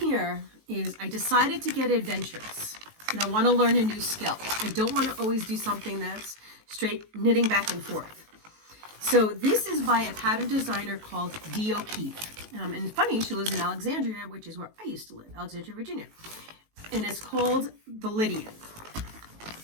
is I decided to get adventurous, and I want to learn a new skill. I don't want to always do something that's straight knitting back and forth. So this is by a pattern designer called Dee O'Keefe. And it's funny, she lives in Alexandria, which is where I used to live, Alexandria, Virginia. And it's called the Lydian.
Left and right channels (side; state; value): left; late; 19 ms